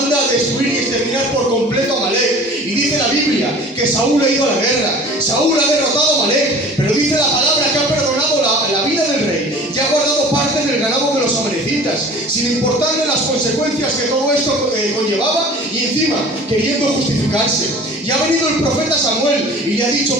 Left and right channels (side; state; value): both; normal; correlation 0.44